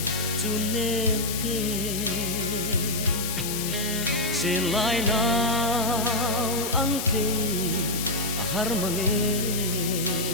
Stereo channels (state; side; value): noise; left; hiss, 4 dB below the sound